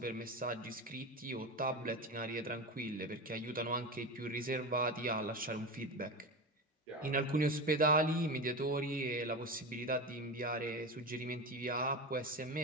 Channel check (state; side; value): normal; both; correlation 0.23